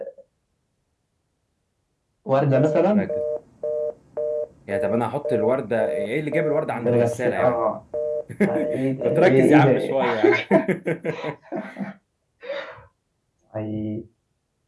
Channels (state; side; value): identical; both; correlation 1.00